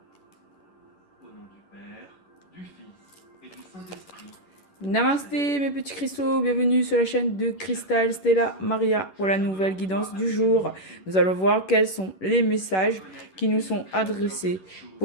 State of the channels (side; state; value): right; late; 11 ms